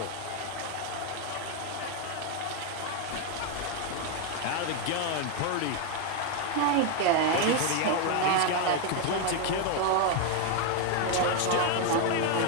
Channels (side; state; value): both; different; correlation 0.01